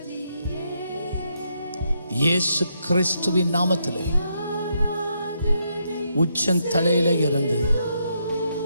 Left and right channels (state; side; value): inverted; both; correlation -0.78